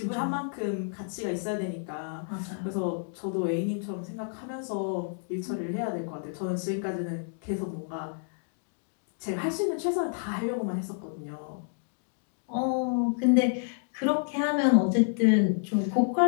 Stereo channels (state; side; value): silent; right; digital silence